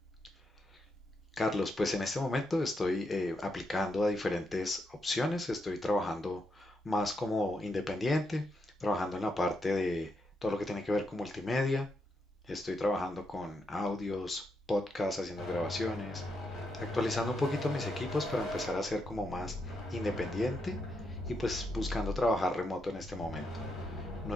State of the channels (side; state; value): both; normal; correlation 0.81